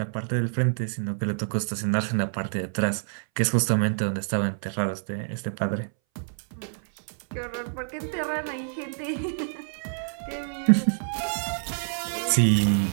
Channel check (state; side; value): silent; left; 60 dB below the other